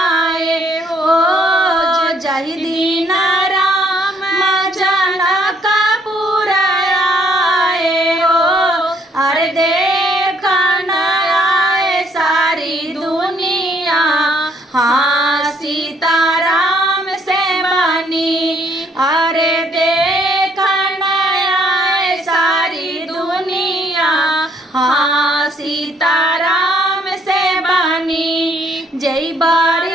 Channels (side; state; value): both; normal; correlation 0.67